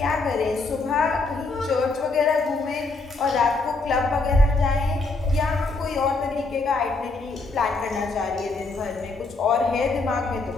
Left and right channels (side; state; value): right; quieter; 3.6 dB